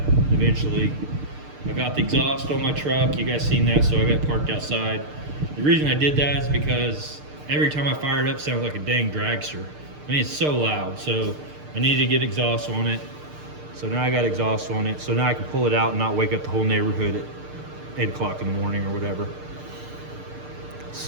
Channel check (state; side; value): late; left; 6.6 ms